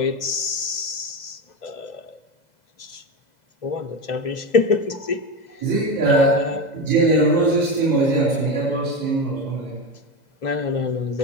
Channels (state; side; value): late; right; 2.0 ms